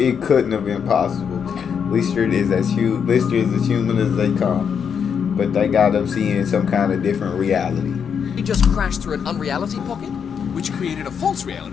couldn't have been possible. Lister is as human as they come, but they got them seeing some kind of different reality. he just crashed through an unreality pocket? Which created a false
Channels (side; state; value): right; quieter; 7.1 dB